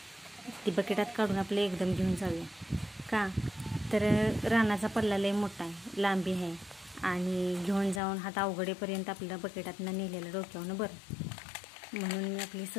ती बकेटात काढून आपलं एकदम घेऊन जाऊया. का तर रानाचा पल्ला लय मोठा आहे, लांबी आहे आणि घेऊन जाऊन हात अवघडेपर्यंत आपल्याला बकेटातनं नेलेलं डोक्यावनं बरं. म्हणून मी आपली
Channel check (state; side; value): drops out; right; at 8.0 s